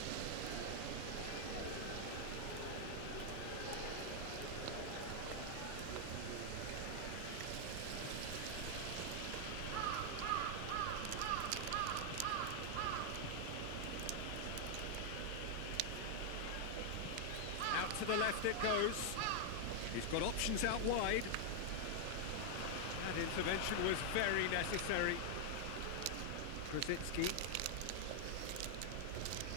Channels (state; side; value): different; both; correlation 0.00